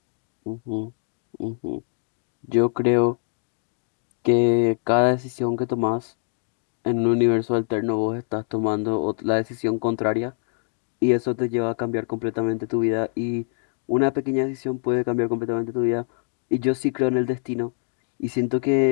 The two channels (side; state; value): right; silent; digital silence